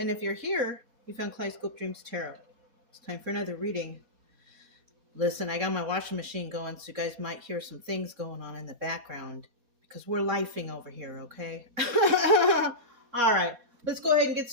if you're here, you found Kaleidoscope Dreams Tarot. It's time for another reading. Listen, I got my washing machine going, so you guys might hear some things going on in the background because we're lifing over here, okay? All right, let's go ahead and get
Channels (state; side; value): late; left; 4.2 ms